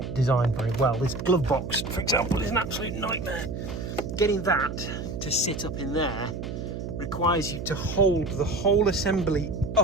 designed very well. This glove box, for example, is an absolute nightmare. Getting that to sit up in there requires you to hold the whole assembly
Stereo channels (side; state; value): right; noise; hum, 6 dB below the sound